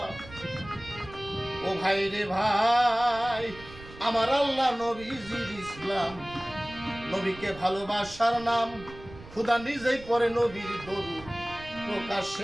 ও ভাই রে ভাই, আমার আল্লাহ নবীজির ইসলাম, নবীকে ভালোবাসার নাম, খুদা নিজেই পরে নবীর দরুদ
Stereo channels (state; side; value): noise; right; rumble, 17 dB below the sound